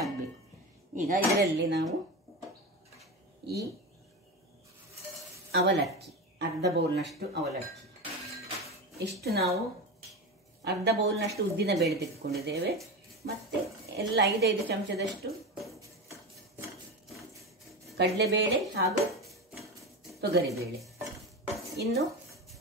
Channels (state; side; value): normal; both; correlation 0.22